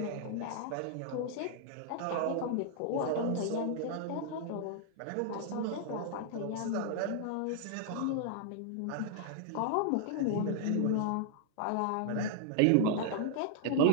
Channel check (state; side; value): different; both; correlation -0.01